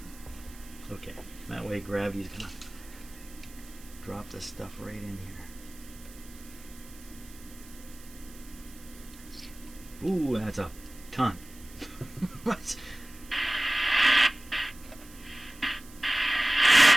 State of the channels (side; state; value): right; noise; hiss, 20 dB below the sound